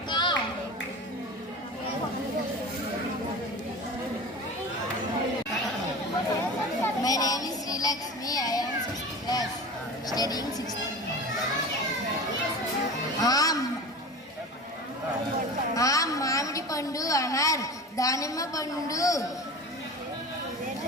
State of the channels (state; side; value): normal; both; correlation 0.34